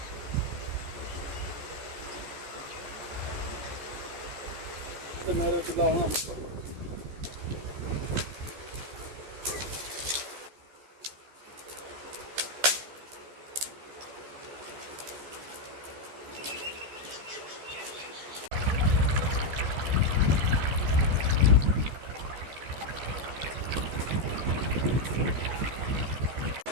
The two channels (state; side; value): late; left; 14 ms